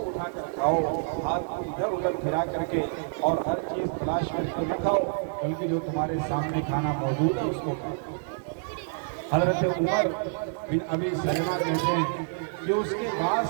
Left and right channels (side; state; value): left; silent; digital silence